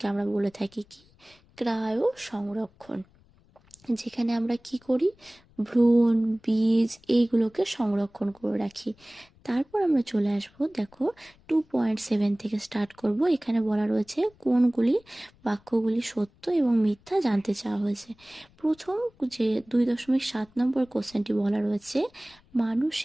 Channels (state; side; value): noise; left; rumble, 30 dB below the sound